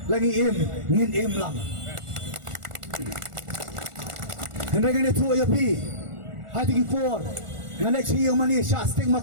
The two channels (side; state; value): left; late; 1.4 ms